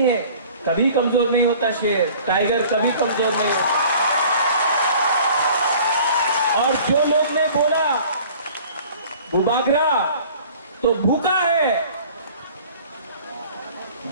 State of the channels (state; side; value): inverted; both; correlation -0.48